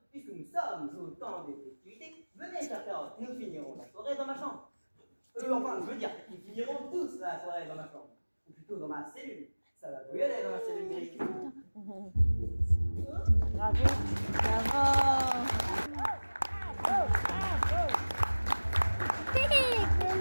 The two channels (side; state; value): both; inverted; correlation -1.00